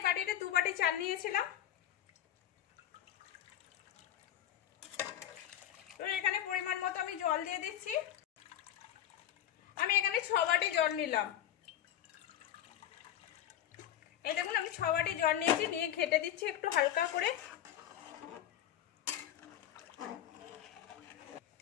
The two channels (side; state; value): right; quieter; 11.3 dB